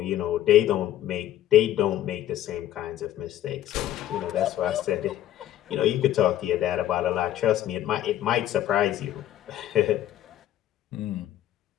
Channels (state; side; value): quieter; right; 12.5 dB